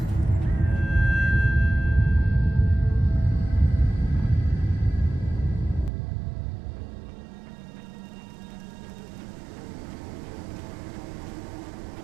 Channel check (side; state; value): left; drops out; at 5.9 s